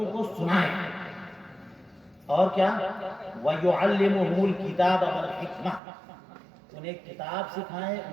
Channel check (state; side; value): drops out; left; at 5.8 s